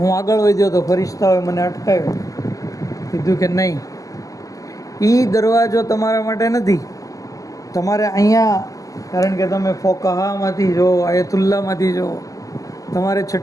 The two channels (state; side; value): late; right; 0.17 ms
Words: આગળ વધ્યો તો ફરિશ્તાઓએ મને અટકાવ્યો. કીધું કે નહીં, એ દરવાજો તમારા માટે નથી. તમારે અહીંયા, કારણ કે તમે ફોકાહામાંથી જો, આયતુલ્લામાંથી જો, તમારે